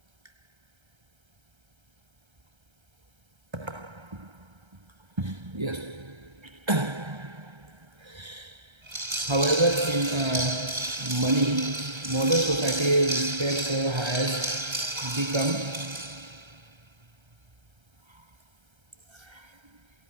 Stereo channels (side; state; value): left; late; 1.3 ms